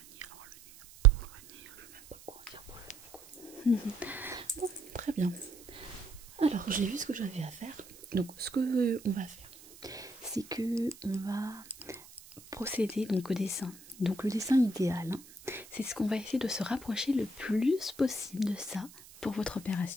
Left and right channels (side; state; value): right; noise; hiss, 20 dB below the sound